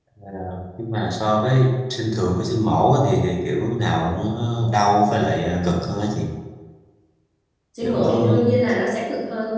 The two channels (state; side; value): identical; both; correlation 1.00